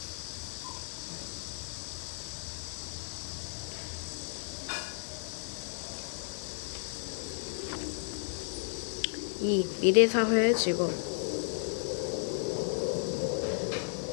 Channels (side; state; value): right; silent; digital silence